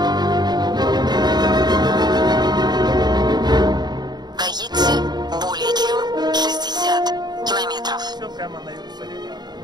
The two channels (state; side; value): late; left; 0.20 ms